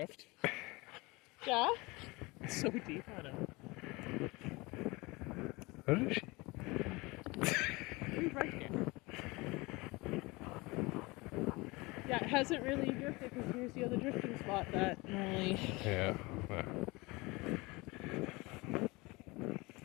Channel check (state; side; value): quieter; right; 24.1 dB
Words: Yeah? It's so deep on him. What is she? He's right here. Yeah, it hasn't really drifted because here's the other drifting spot that normally... Yeah.